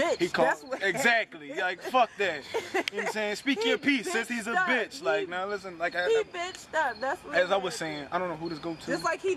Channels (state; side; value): identical; both; correlation 1.00